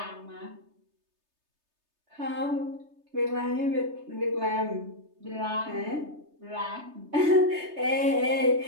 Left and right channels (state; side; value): late; left; 3.3 ms